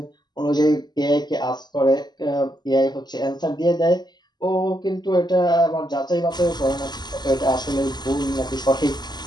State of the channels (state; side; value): late; right; 0.21 ms